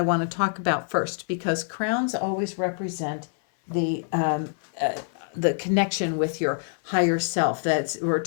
want to talk about first, because crowns always represent the the connection with your higher self. We're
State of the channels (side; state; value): right; silent; 61 dB below the other